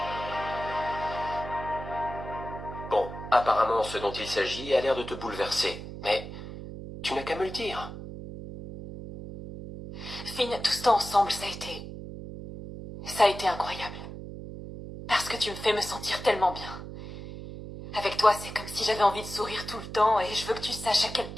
Bon, apparemment ce dont il s'agit a l'air de te bouleverser, mais tu n'as qu'à me le dire. Finn, tout ce temps ensemble, ça a été incroyable. Parce que tu me fais me sentir tellement bien. Avec toi, c'est comme si j'avais envie de sourire tout le temps et je veux que tu saches à quel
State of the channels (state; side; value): noise; right; hum, 10 dB below the sound